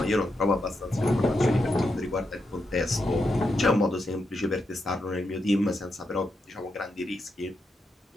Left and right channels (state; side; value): normal; both; correlation 0.84